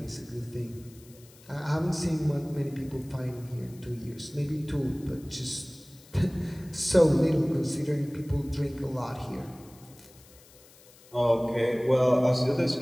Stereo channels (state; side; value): noise; left; hiss, 25 dB below the sound